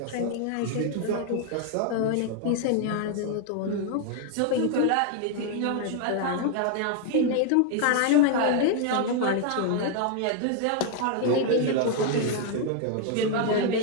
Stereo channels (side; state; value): both; different; correlation 0.00